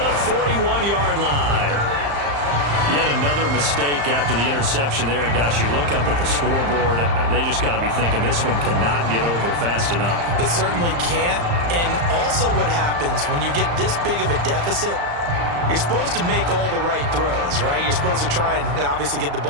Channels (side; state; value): left; late; 35 ms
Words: 41-yard line. Yet another mistake after the interception there. And gosh, you look up at the scoreboard, they just got to be thinking this one cannot get over fast enough. It certainly can't. And also what happens when you get this big of a deficit, you're supposed to make all the right throws, right? You're supposed to try and obviously get the